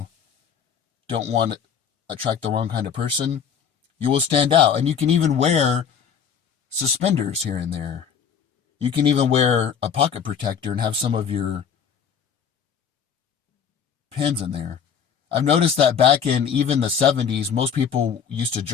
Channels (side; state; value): right; quieter; 7.4 dB